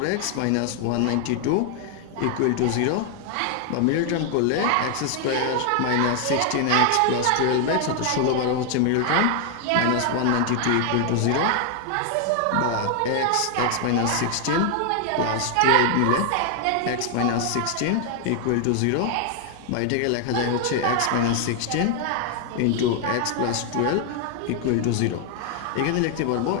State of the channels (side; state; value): both; different; correlation 0.00